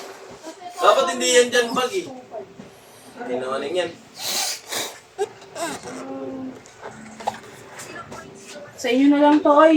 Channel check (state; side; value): identical; both; correlation 1.00